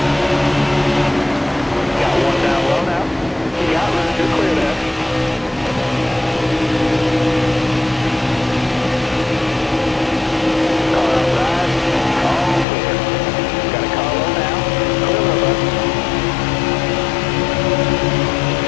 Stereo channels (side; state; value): right; drops out; at 12.7 s